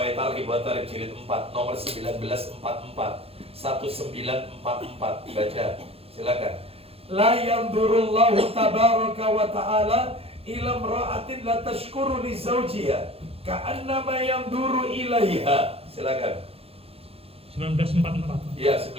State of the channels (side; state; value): left; late; 0.28 ms